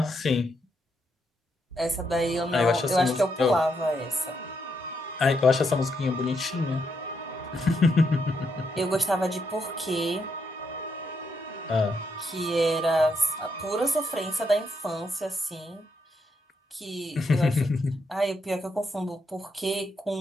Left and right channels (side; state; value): both; normal; correlation 0.78